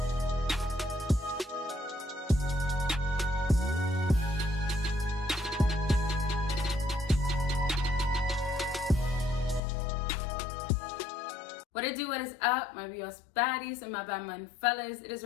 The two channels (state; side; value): drops out; right; at 9.6 s